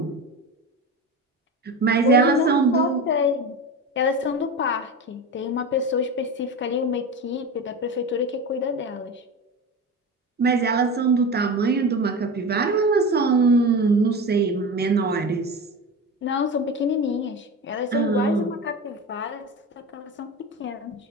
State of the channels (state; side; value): normal; both; correlation 0.26